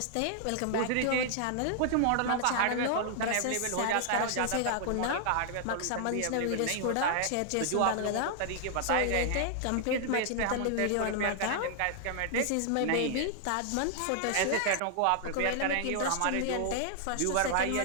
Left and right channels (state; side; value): different; both; correlation 0.00